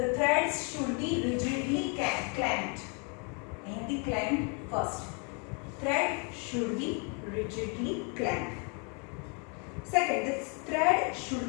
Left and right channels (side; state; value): right; quieter; 36.5 dB